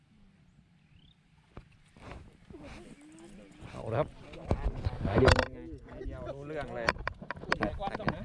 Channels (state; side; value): identical; both; correlation 1.00